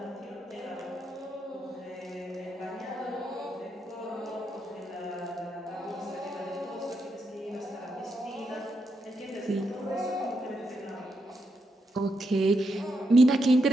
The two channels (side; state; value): both; normal; correlation 0.82